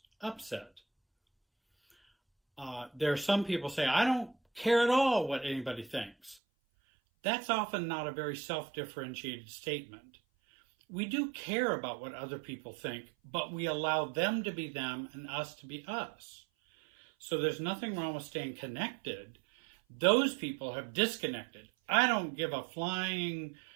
upset. There are some people say, I don't care at all what anybody thinks. That's often not a very self-differentiated statement. We do care about what other people think, but we allow them to be them and us to be us. So there's nothing wrong with staying connected. Those people have disconnected. I don't give a flying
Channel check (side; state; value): left; drops out; at 6.4 s